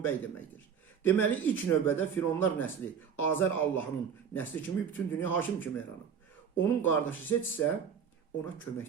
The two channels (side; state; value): left; quieter; 7.3 dB